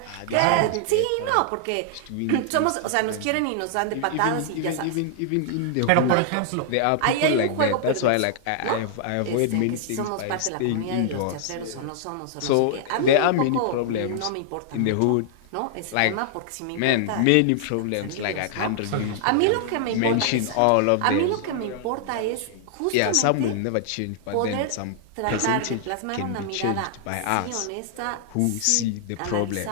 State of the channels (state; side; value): different; both; correlation -0.01